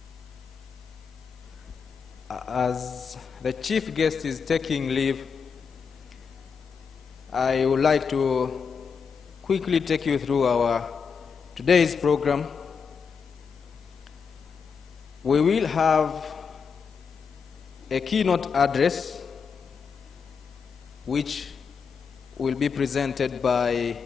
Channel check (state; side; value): quieter; right; 6.0 dB